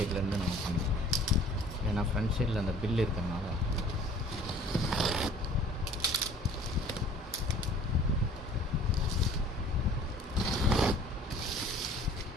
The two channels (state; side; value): normal; both; correlation 0.50